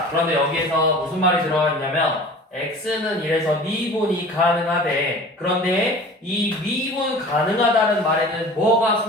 그런데 여기에서 무슨 말이 들어가 있냐면 x는 이래서 미분이 가능하대. 그런데 이 미분 가능하다는 말에는 뭐가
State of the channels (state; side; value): normal; both; correlation 0.42